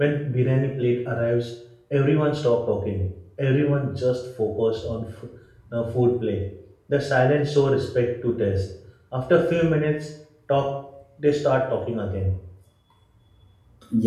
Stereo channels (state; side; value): identical; both; correlation 1.00